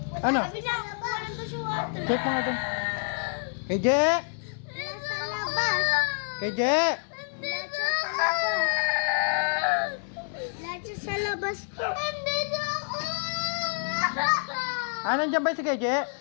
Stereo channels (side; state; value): right; silent; 59 dB below the other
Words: Ano? Sabi na, walang to si water. Check mo nga doon. KJ! Nasa labas. KJ! Nandito ako. Nandito sa labas ko. Nandito ako. Nandiyan ba si KJ?